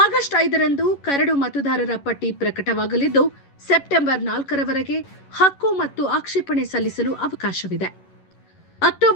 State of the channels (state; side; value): late; right; 11 ms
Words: ಆಗಸ್ಟ್ 5ರಂದು ಕರಡು ಮತದಾರರ ಪಟ್ಟಿ ಪ್ರಕಟವಾಗಲಿದ್ದು, ಸೆಪ್ಟೆಂಬರ್ 4ರವರೆಗೆ ಹಕ್ಕು ಮತ್ತು ಆಕ್ಷೇಪಣೆ ಸಲ್ಲಿಸಲು ಅವಕಾಶವಿದೆ.